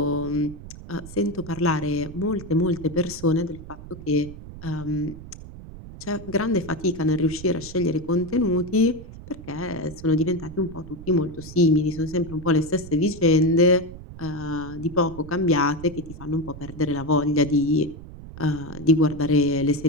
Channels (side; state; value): right; noise; rumble, 14 dB below the sound